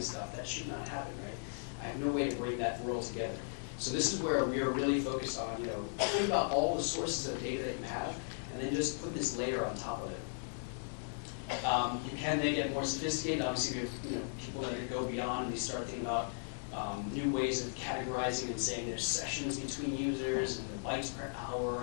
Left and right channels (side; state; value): right; silent; digital silence